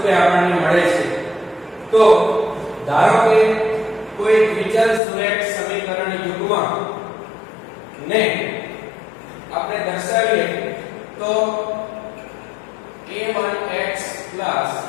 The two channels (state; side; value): drops out; right; at 5.0 s